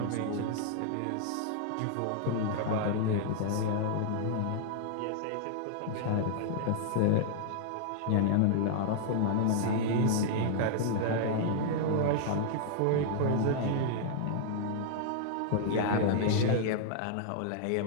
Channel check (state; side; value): different; both; correlation -0.01